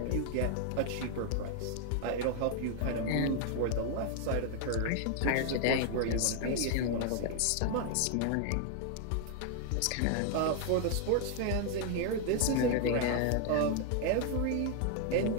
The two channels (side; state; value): both; different; correlation 0.00